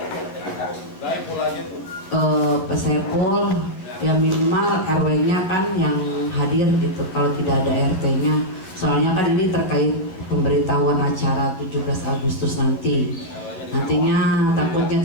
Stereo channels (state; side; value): late; right; 11 ms